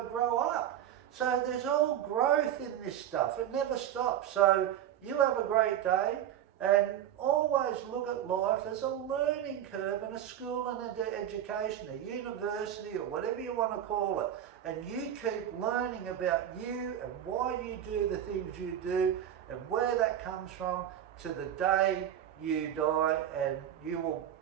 to grow up. So there's all growth in this stuff. It never stops. So you have a great day, and always look at life as a learning curve and a school and an education, a university or whatever you want to call it. And you keep learning about you and why you do the things you do and where that comes from to the day you die, and you will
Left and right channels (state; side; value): quieter; left; 10.6 dB